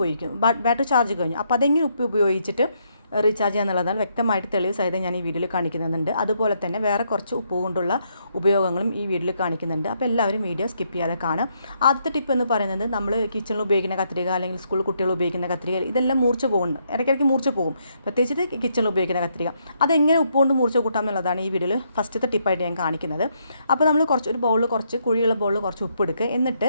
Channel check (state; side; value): inverted; both; correlation -0.75